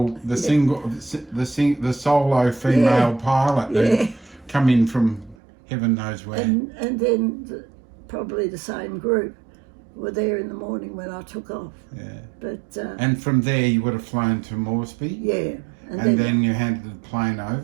the solo female pilot who come in from heaven knows where. And then probably the same group were there in the morning when I took off. Yeah. But and from there you would have flown to Moresby. Yeah. And then you handed the plane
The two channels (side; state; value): left; drops out; at 5.4 s